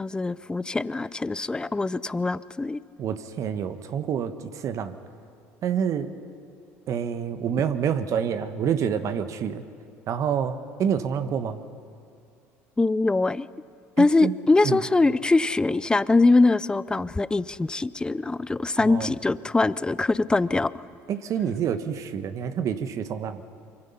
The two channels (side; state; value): both; normal; correlation 0.82